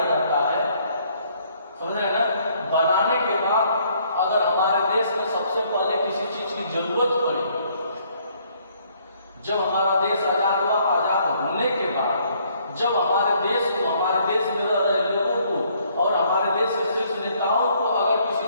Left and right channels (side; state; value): both; inverted; correlation -0.65